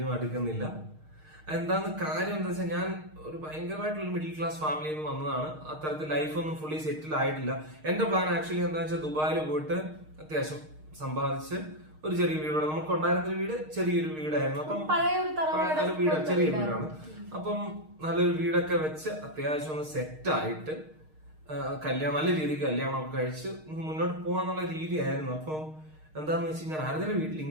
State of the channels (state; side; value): late; left; 6.5 ms